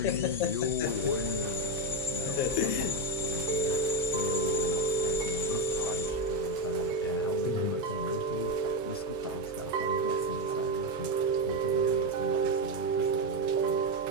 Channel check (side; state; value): both; normal; correlation 0.09